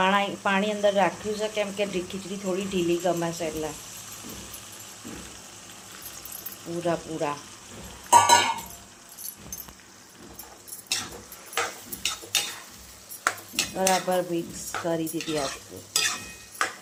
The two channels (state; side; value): identical; both; correlation 1.00